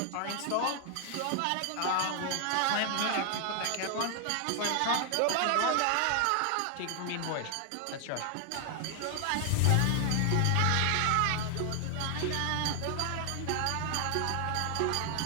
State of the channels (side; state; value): both; different; correlation 0.00